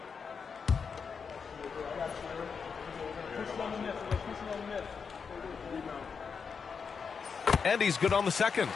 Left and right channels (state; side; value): quieter; right; 5.9 dB